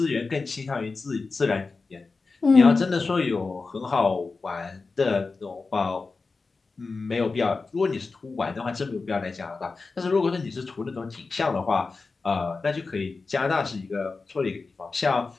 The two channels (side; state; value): right; quieter; 4.1 dB